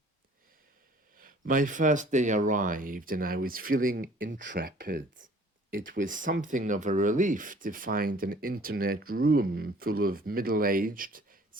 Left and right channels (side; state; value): both; normal; correlation 0.53